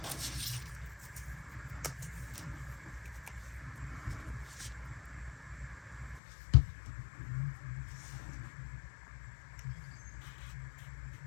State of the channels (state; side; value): drops out; right; at 6.2 s